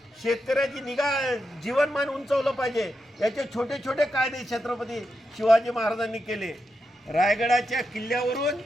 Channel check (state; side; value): normal; both; correlation 0.86